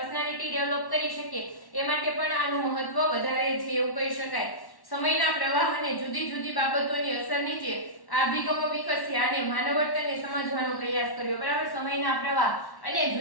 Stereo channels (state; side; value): late; right; 1.1 ms